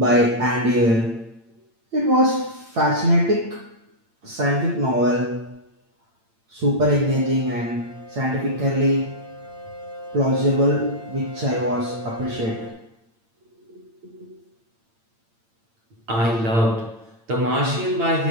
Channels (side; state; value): left; late; 8.8 ms